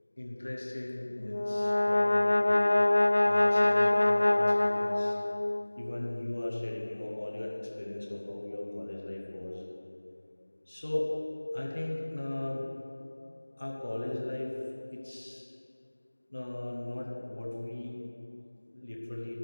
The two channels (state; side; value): inverted; both; correlation -1.00